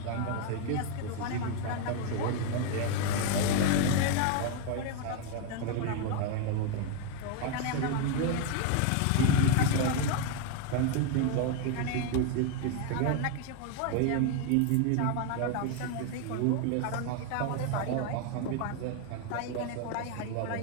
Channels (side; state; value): both; different; correlation 0.01